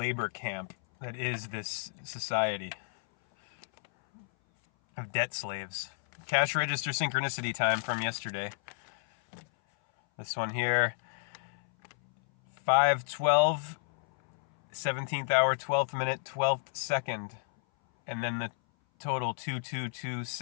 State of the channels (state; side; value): silent; right; 57 dB below the other